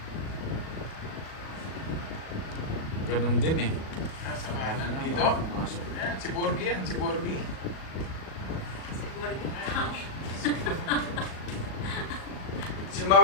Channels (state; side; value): late; right; 38 ms